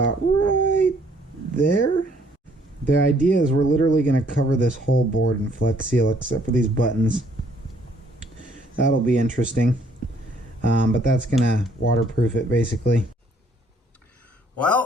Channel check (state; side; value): normal; both; correlation 0.64